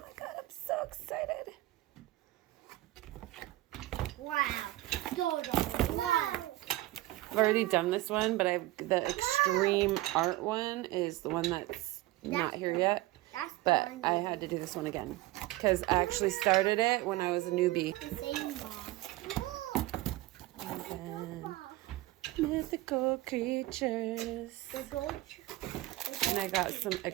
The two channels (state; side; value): quieter; left; 17.9 dB